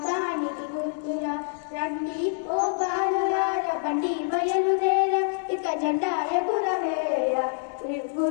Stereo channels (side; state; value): right; silent; 61 dB below the other